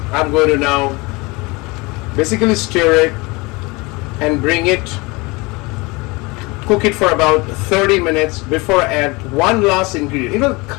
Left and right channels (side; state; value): right; quieter; 25.1 dB